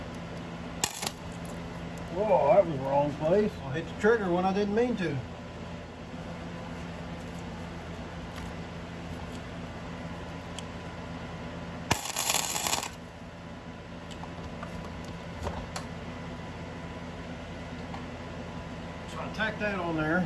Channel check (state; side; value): identical; both; correlation 1.00